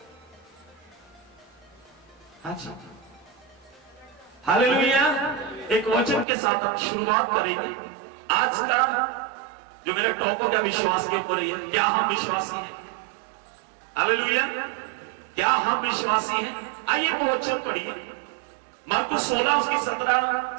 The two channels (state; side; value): drops out; left; at 6.2 s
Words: अच्छा, हालेलुया। एक वचन के साथ हम शुरुआत करेंगे। आज का जो मेरा टॉपिक है विश्वास के ऊपर है। क्या हम विश्वासी हैं? हालेलुया, क्या हम विश्वासी हैं? आइए वो वचन पढ़िए, मरकुस 16 उसकी 17